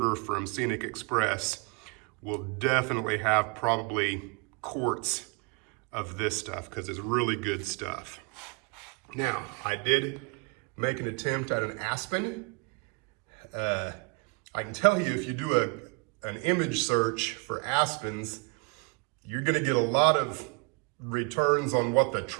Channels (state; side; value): quieter; left; 31.5 dB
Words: from Scenic Express will definitely have probably quarts of this stuff, because it's really good stuff. Now, I did make an attempt at an aspen. I can tell you, if you do an image search for aspens, you're gonna get a lot of returns on what the